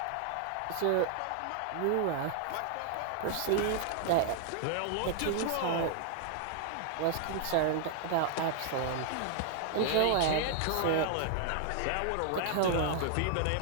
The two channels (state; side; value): different; both; correlation 0.00